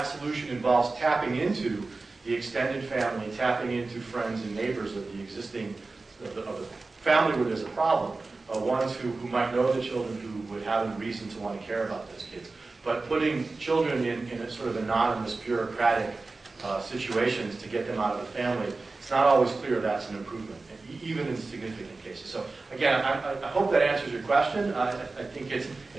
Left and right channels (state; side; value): quieter; left; 3.6 dB